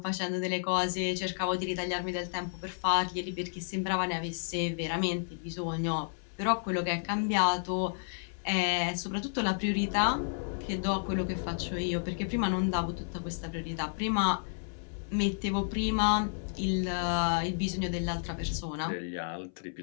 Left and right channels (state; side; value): silent; right; 57 dB below the other